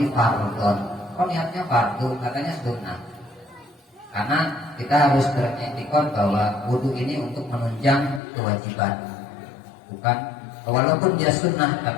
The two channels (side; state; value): right; drops out; at 8.2 s